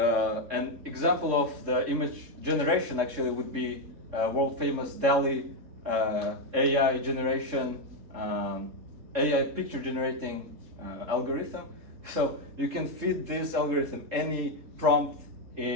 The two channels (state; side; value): late; left; 3.7 ms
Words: example of the image generation actually would be world famous DALL-E AI generation, AI picture generating algorithm. So you can feed this algorithm any prompt